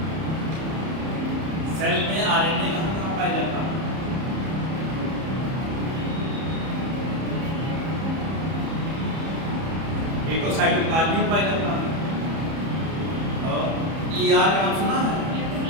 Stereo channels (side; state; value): left; late; 31 ms